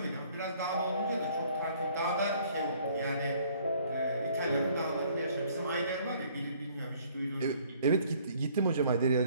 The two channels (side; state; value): both; inverted; correlation -0.59